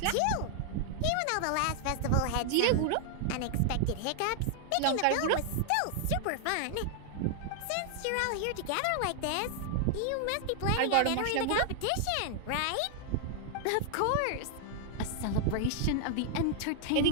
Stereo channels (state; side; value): different; both; correlation 0.00